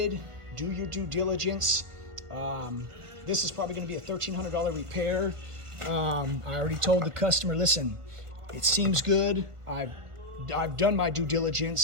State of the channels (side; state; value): left; late; 1.4 ms